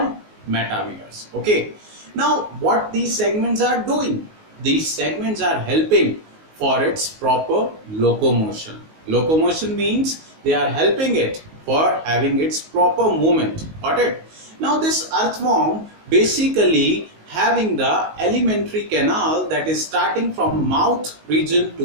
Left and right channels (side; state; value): left; late; 19 ms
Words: metameres. Okay. Now, what these segments are doing? These segments are helping for its proper locomotion. Locomotion means they are helping it for having its proper movement. Got it? Now, this earthworm basically having the alimentary canal that is starting from mouth region